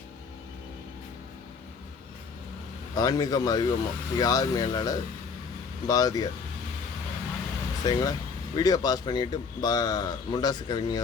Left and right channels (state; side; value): quieter; right; 5.3 dB